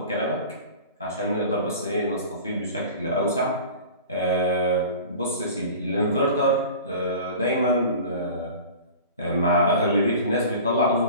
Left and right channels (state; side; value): inverted; both; correlation -0.39